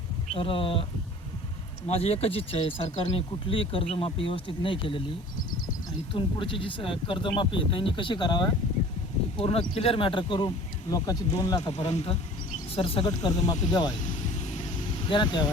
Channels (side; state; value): both; normal; correlation 0.46